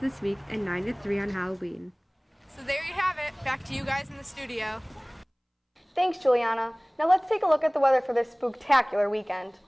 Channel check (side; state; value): both; identical; correlation 1.00